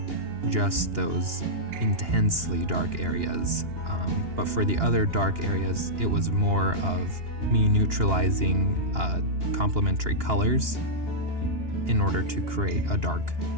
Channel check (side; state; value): left; late; 2.8 ms